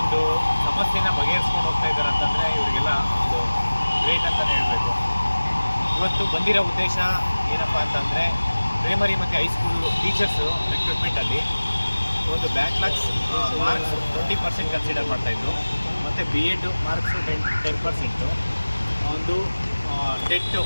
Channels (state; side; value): inverted; both; correlation -1.00